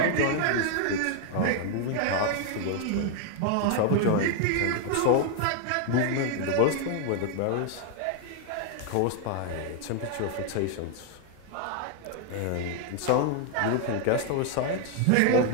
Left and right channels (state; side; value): different; both; correlation 0.00